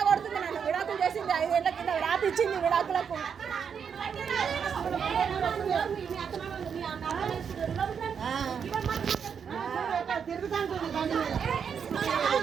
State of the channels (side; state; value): left; quieter; 7.0 dB